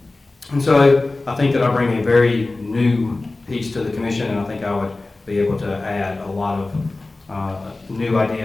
And so I think that I bring a very new piece to the commission, and I think I would be able to add a lot of new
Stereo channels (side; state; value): right; quieter; 3.2 dB